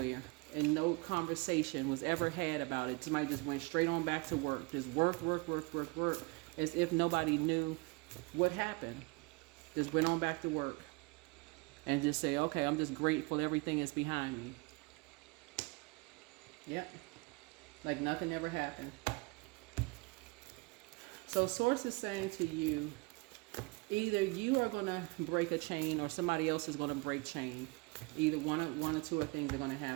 and no conversation was ever had about it. Somebody just went straight on back to work. Just work, as if nobody knew what happened. Just went on back to work. And just say, okay, I'm just grateful everything is behind me. Yep. Like nothing ever happened. So Source is saying to you, either you are going to break a chain or somebody else is going to break chain. Either one or two of things are going to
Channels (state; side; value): quieter; left; 27.0 dB